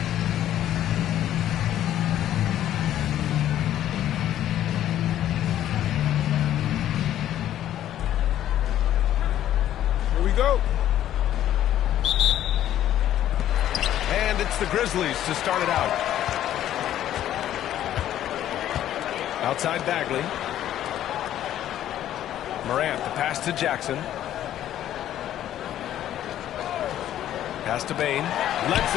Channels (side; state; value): right; quieter; 11.9 dB